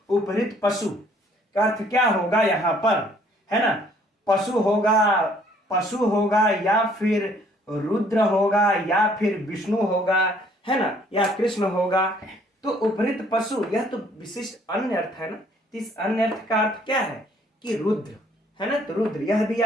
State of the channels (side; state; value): both; normal; correlation 0.61